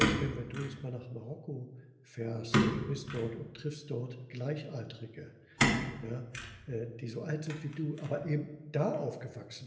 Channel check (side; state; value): both; identical; correlation 1.00